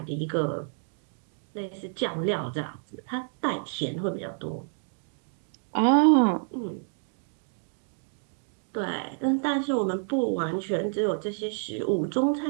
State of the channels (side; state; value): left; silent; 59 dB below the other